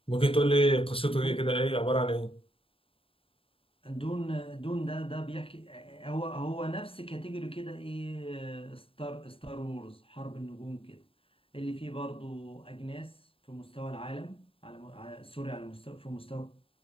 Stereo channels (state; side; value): late; right; 0.27 ms